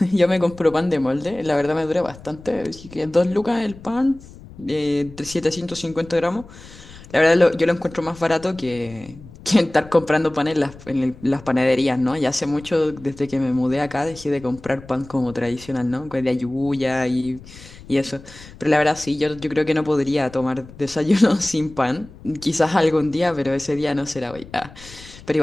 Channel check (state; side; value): noise; left; rumble, 19 dB below the sound